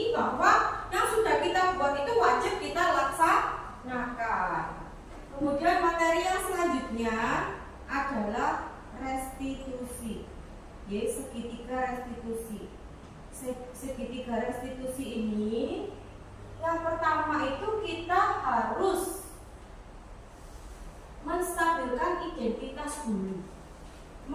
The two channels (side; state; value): both; identical; correlation 1.00